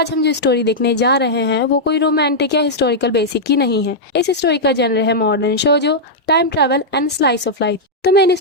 हम जो स्टोरी देखने जा रहे हैं वो कोई रोमांटिक या हिस्टोरिकल बेसिक की नहीं है। इस स्टोरी का जनर है modern Shojo, time travel and slice of life. तो मैंने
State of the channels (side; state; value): both; normal; correlation -0.07